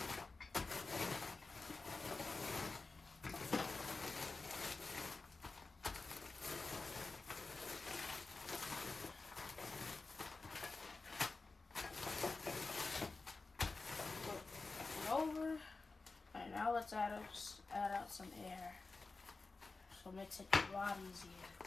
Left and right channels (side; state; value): right; quieter; 3.8 dB